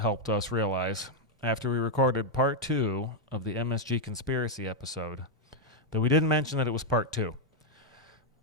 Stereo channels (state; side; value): normal; both; correlation -0.01